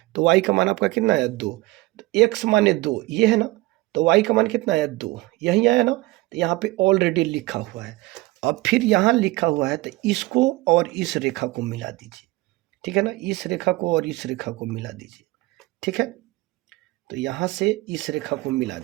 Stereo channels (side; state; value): left; quieter; 20.3 dB